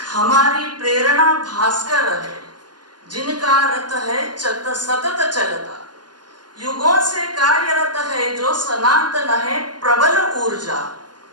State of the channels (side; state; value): left; late; 0.70 ms